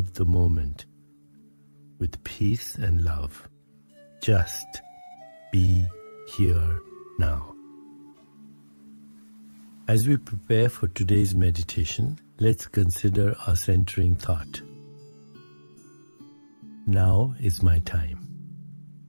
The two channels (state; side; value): inverted; both; correlation -1.00